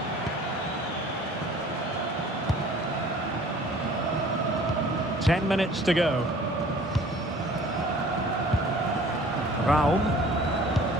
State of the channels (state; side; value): normal; both; correlation 0.50